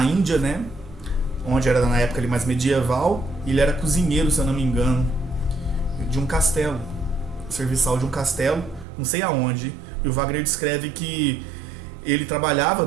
Índia, né? Onde era na época ali mais medieval. Ele era cozinheiro, se eu não me engano, de um castelo, serviçal de um castelo, não sei aonde. E o Wagner descreve que ele trabalhava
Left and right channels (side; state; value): left; drops out; at 8.8 s